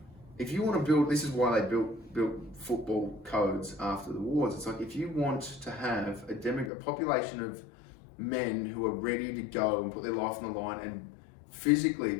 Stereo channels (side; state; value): right; drops out; at 6.7 s